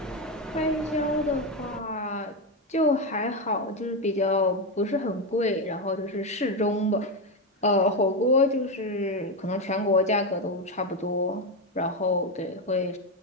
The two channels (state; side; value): normal; both; correlation 0.10